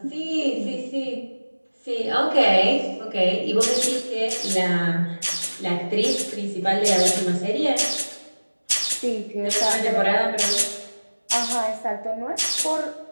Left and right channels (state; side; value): inverted; both; correlation -1.00